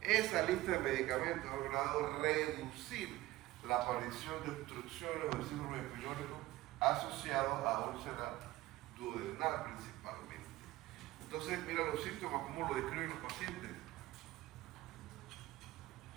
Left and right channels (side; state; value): left; quieter; 17.2 dB